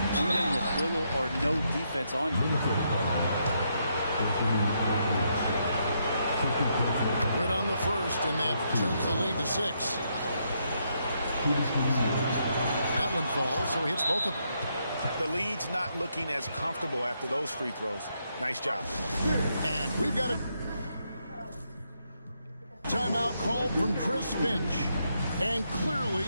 even with little or no defense on you. Good on the first, and that turns the lead to 6. That one falls, so he hits both of them. The lead's not looking as comfortable after those free throws. Nice job. And we've got a timeout called from Chris Finch. And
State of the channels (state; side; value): inverted; both; correlation -0.78